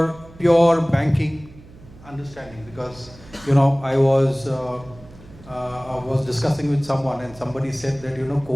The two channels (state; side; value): noise; right; hum, 21 dB below the sound